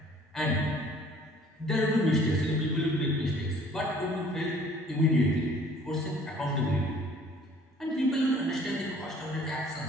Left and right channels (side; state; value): both; normal; correlation 0.55